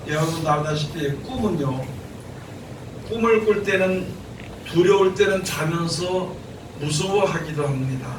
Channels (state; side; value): identical; both; correlation 1.00